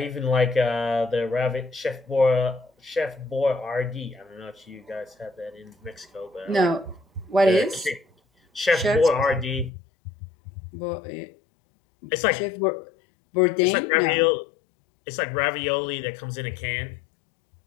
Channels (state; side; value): drops out; right; at 9.7 s